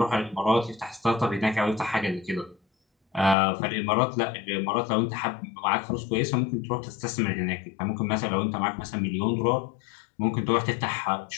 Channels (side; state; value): right; drops out; at 3.4 s